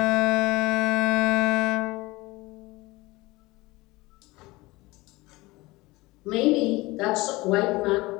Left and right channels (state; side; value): quieter; right; 21.4 dB